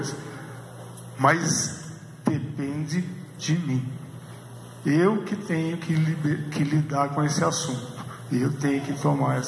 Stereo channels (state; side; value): identical; both; correlation 1.00